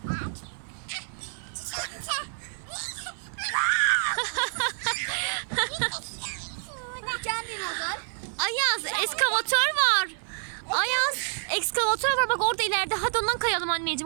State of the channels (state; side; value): silent; left; digital silence